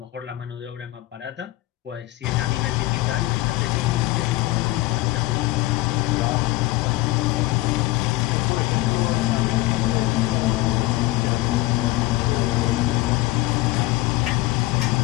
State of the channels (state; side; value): quieter; right; 17.9 dB